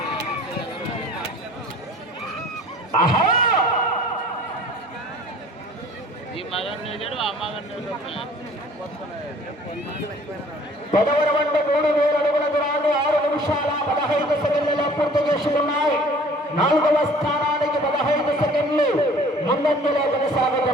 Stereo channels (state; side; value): normal; both; correlation 0.51